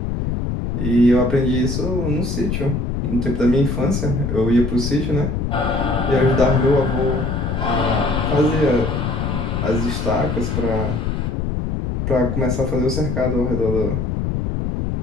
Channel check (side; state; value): left; noise; rumble, 1 dB below the sound